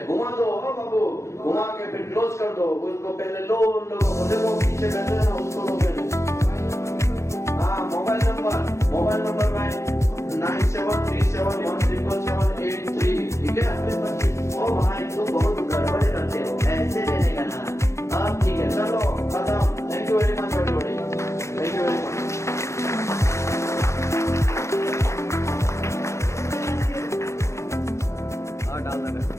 घुमा दो बाबू, घुमा के फिर क्लोज कर दो। उसको पहले लो, उन लोगों को देखो पीछे बैठे हैं ना, उसको लो पहले। हाँ, मोबाइल नंबर भाई 9737177783, ठीक है? ओ भाई तुम बहुत गड़बड़ करते हो, ऐसे देने का ना। अब ठीक है, चलो खत्म। Thank you very much everybody, thank you very much.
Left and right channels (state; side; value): late; right; 0.14 ms